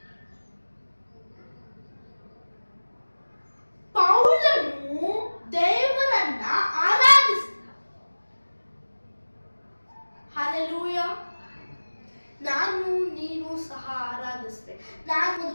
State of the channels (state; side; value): inverted; both; correlation -1.00